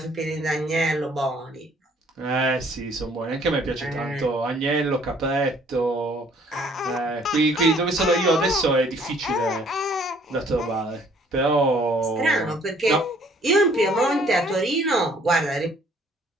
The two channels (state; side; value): normal; both; correlation 0.60